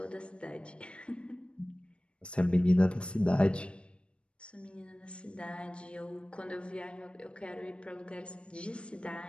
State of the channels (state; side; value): late; right; 0.058 ms